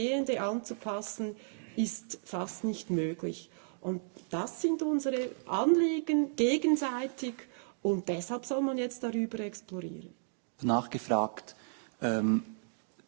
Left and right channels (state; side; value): silent; left; digital silence